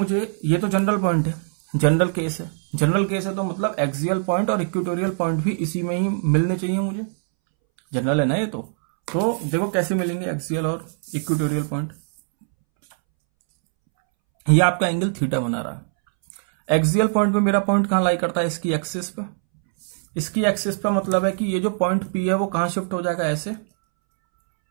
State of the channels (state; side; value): silent; left; 64 dB below the other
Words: ये तो जनरल पॉइंट है, जनरल केस है, जनरल केस है तो मतलब एक्सियल पॉइंट और इक्वेटोरियल पॉइंट भी इसी में ही मिलने चाहिए मुझे, जनरल है ना ये तो देखो कैसे मिलेंगे एक्सियल और इक्वेटोरियल पॉइंट। ये आपका एंगल थीटा बना रहा है, एक्सियल पॉइंट में मेरा पॉइंट कहां लाई करता है, इसकी एक्सिस पे, इसकी एक्सिस पे मतलब है कि ये जो पॉइंट पी है वो कहां शिफ्ट हो जाएगा, ऐसे।